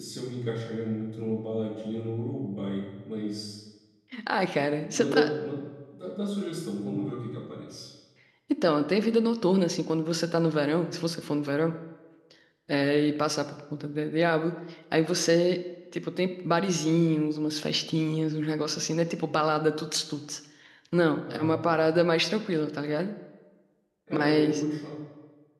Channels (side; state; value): both; identical; correlation 1.00